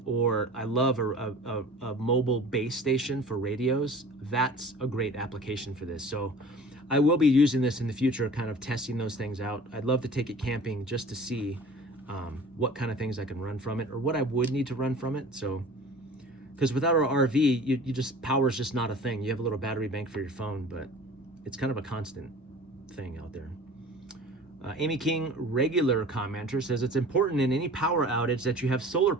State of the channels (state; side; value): normal; both; correlation 0.43